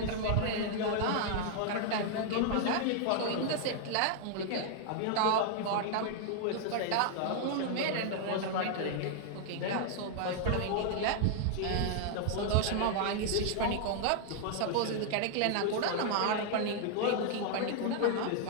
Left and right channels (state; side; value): different; both; correlation 0.00